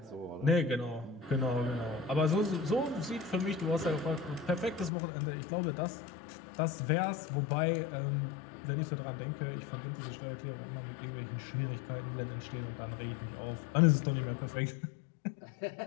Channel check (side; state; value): right; drops out; at 4.9 s